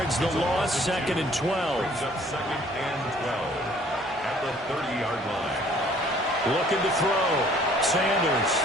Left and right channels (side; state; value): both; normal; correlation 0.57